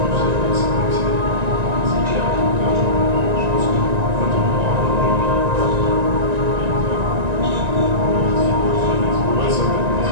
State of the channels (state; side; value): late; left; 1.9 ms